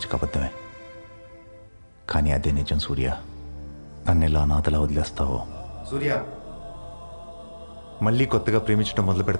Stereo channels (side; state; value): both; inverted; correlation -1.00